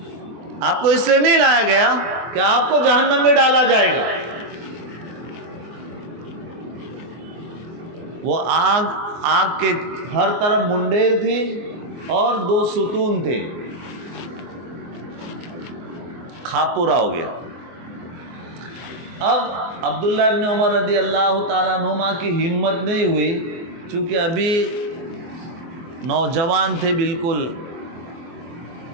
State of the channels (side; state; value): left; late; 24 ms